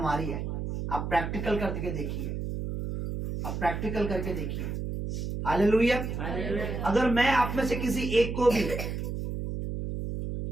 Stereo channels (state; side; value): noise; right; hum, 4 dB below the sound